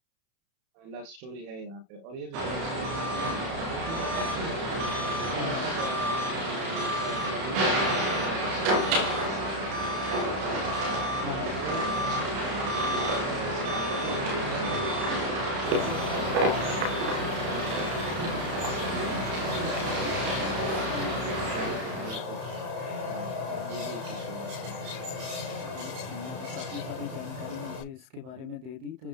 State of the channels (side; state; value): left; late; 31 ms